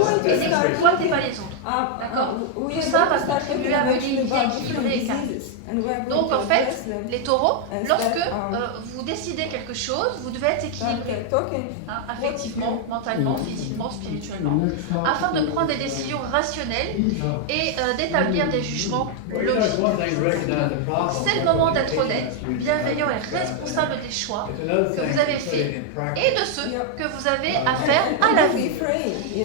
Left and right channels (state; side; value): different; both; correlation 0.00